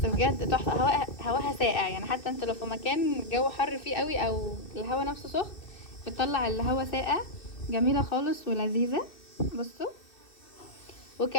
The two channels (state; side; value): late; right; 2.6 ms